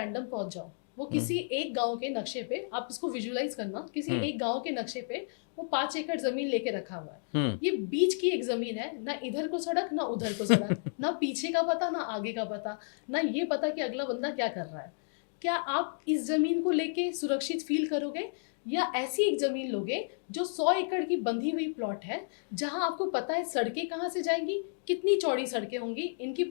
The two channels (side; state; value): right; silent; digital silence